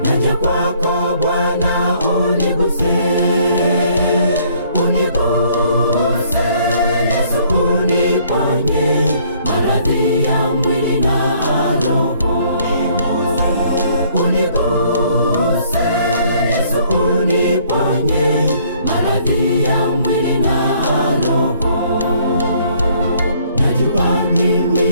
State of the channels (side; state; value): both; inverted; correlation -0.63